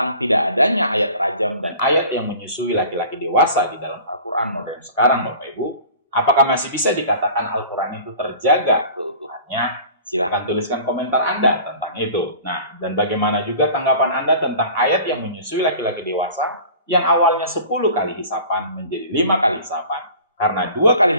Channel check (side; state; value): both; inverted; correlation -0.43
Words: tidak adanya ayat rajam dan ayat yang menyusui laki-laki dewasa di dalam Al-Quran modern sekarang, Bapak Ibu? Apakah masih bisa dikatakan Al-Quran itu terjaga keutuhannya? Silahkan tuliskan komentar Anda tentang itu. Nah, dan bagaimana juga tanggapan Anda tentang ayat yang menyusui laki-laki dewasa yang awalnya 10 kali hisapan menjadi 5 kali hisapan. Karena 2 kali